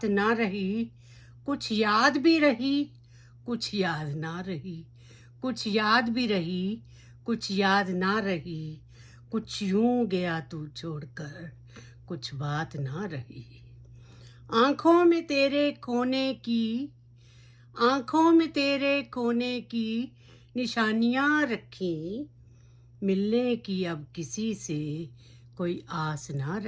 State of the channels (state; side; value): identical; both; correlation 1.00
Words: ना रही, कुछ याद भी रही, कुछ याद ना रही, कुछ याद भी रही, कुछ याद ना रही, कुछ यूं गया तू छोड़कर, कुछ बात ना रही। आंखों में तेरे खोने की, आंखों में तेरे खोने की निशानियां रखी, मिलने की अब किसी से कोई आस ना